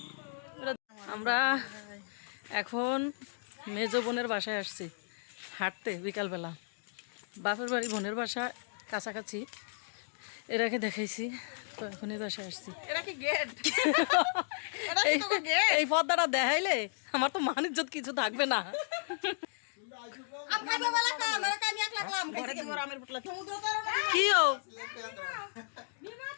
আমরা এখন মেজ বোনের বাসায় আসছি হাঁটতে বিকালবেলা। বাপের বাড়ি বোনের বাসা কাছাকাছি, এরাকে দেখাইছি তো এখনই বাসায় আসছি। এই পর্দাটা দেখাইলে আমার তো মান ইজ্জত কিছু থাকবে না। কি ও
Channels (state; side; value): silent; right; digital silence